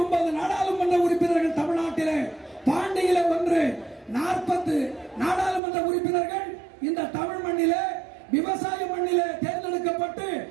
நாடாளுமன்ற உறுப்பினர்கள் தமிழ்நாட்டிலே, பாண்டியிலே 1, 40 நாடாளுமன்ற உறுப்பினர்கள் இந்த தமிழ் மண்ணிலே விவசாய மண்ணிலே தேர்ந்தெடுக்கப்பட்டு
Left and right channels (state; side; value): drops out; left; at 5.6 s